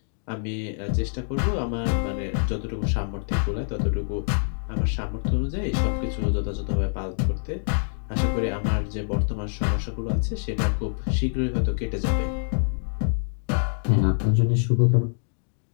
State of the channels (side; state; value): right; silent; digital silence